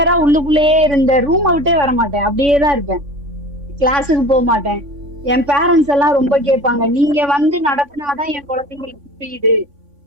உள்ளுக்குள்ளேயே இருந்த, ரூமை விட்டே வர மாட்டேன், அப்படியே தான் இருப்பேன், கிளாஸுக்கு போக மாட்டேன். என் பேரண்ட்ஸ் எல்லாம் ரொம்ப கேட்பாங்க, நீங்க வந்து நடத்தினாதான் என் குழந்தைங்களுக்கு புரியுது,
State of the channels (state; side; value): late; left; 3.5 ms